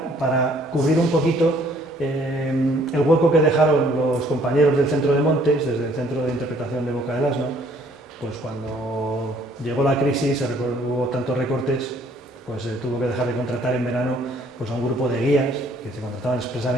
para cubrir un poquito el hueco que dejaron los compañeros del Centro de Montes, desde el Centro de Interpretación de Boca del Asno. Pues cuando llegó la crisis, hubo tantos recortes, pues se tuvo que dejar de contratar en verano pues a un grupo de guías que se contrataban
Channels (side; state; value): both; normal; correlation 0.61